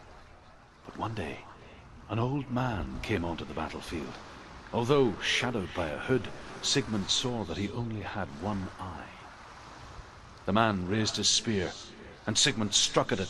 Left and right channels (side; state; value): both; identical; correlation 1.00